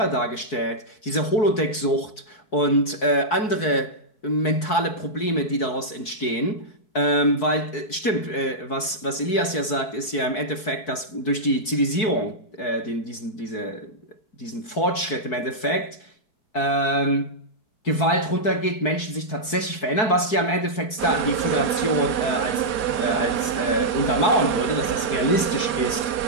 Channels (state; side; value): late; right; 4.6 ms